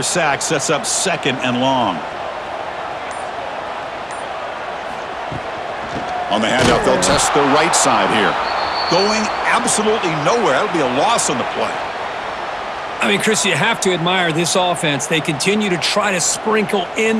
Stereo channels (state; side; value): identical; both; correlation 1.00